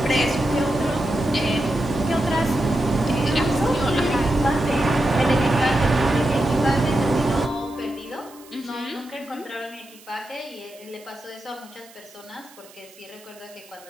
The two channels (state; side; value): noise; right; hiss, 23 dB below the sound